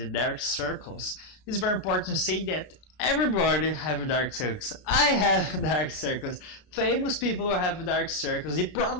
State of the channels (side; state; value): right; late; 33 ms